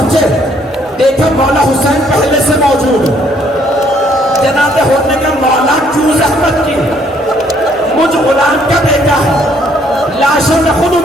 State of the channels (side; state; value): both; normal; correlation 0.66